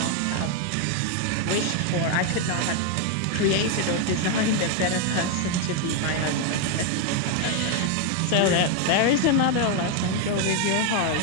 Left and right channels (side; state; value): both; different; correlation 0.01